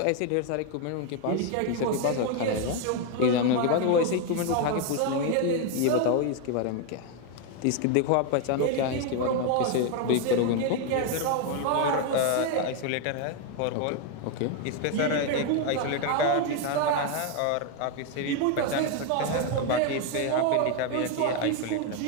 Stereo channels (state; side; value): different; both; correlation 0.01